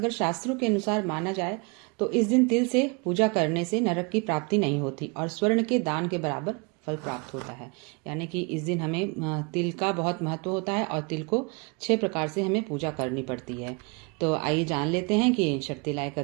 शास्त्रों के अनुसार माना जाए तो इस दिन तिल से पूजा करने से नरक की प्राप्ति नहीं होती और स्वर्ण के दान के बराबर फल प्राप्त होता है। यानी कि इस दिन हमें तिल का बहुत महत्व होता है और तिल को 6 प्रकार से हमें पूजा करनी पड़ती है। तो आइए जान लेते हैं कि शर्तिला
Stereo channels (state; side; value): quieter; left; 31.2 dB